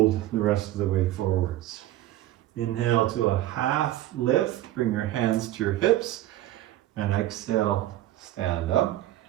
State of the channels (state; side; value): quieter; left; 14.4 dB